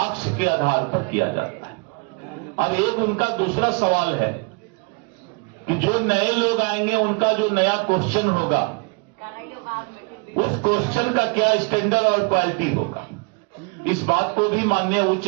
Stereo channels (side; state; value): left; quieter; 32.1 dB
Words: के आधार पर किया जाता है। अब एक उनका दूसरा सवाल है कि जो नए लोग आएंगे उनका जो नया क्वेश्चन होगा उस क्वेश्चन का क्या स्टैंडर्ड और क्वालिटी होगा। इस बात को भी माननीय